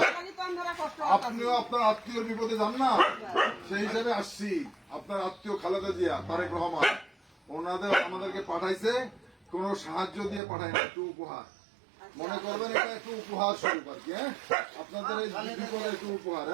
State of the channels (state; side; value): drops out; left; at 10.4 s